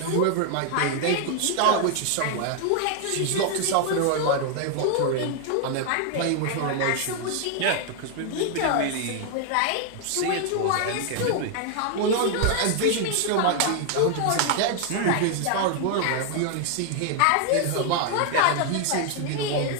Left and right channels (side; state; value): both; different; correlation 0.00